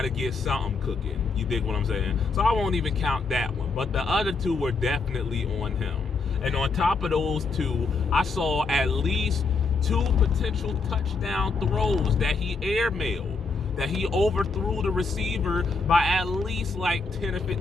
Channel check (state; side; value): quieter; right; 4.2 dB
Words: to get something cooking. You dig what I'm saying? So I won't even count that one. But the other 2 were definitely on him. And on top of those 2, I saw at least 2 potential touchdown throws that he airmailed, that he overthrew the receiver by at least like 10 or